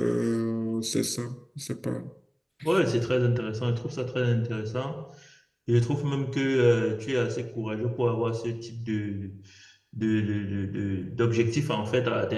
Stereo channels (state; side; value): identical; both; correlation 1.00